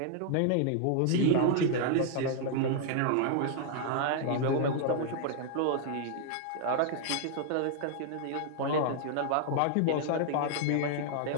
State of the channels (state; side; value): different; both; correlation 0.00